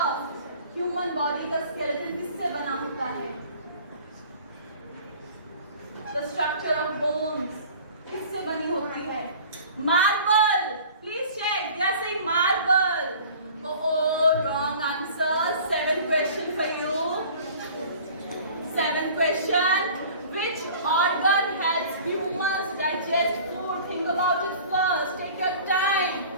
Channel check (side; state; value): both; inverted; correlation -0.45